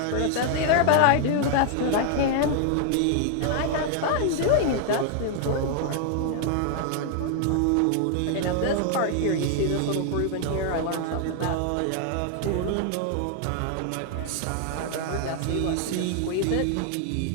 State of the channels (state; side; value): different; both; correlation 0.00